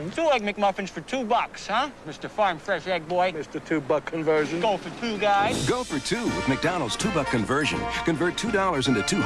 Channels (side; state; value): both; identical; correlation 1.00